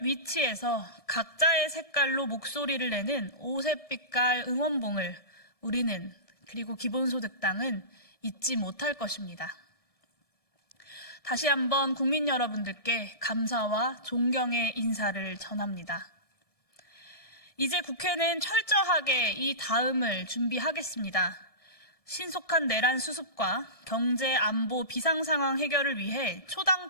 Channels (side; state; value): right; late; 1.6 ms